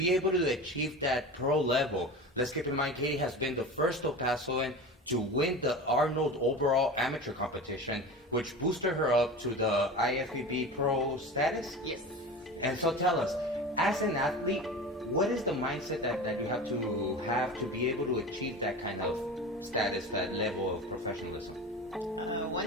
able to achieve that pro level. Let's keep in mind, Katie has been the first El Pasoan to win the Arnold overall amateur competition, which boosted her up to the IFBB pro status. Yes. And so tell us, as an athlete, what is the mindset that you have to be able to achieve that kind of status, that level of professionalism?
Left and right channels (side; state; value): both; normal; correlation 0.31